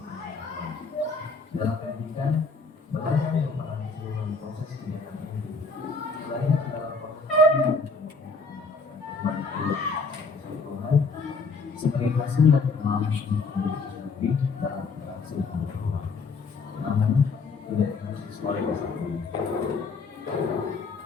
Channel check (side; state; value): right; quieter; 4.2 dB